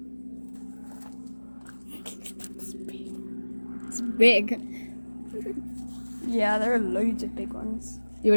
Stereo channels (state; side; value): inverted; both; correlation -1.00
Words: It's big. Yeah, there are loads of big ones.